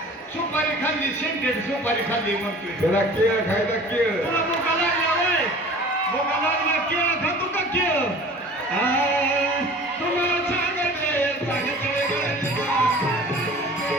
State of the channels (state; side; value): normal; both; correlation 0.44